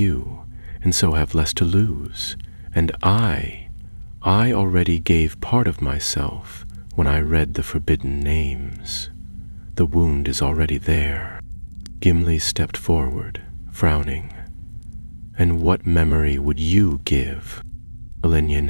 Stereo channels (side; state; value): both; inverted; correlation -1.00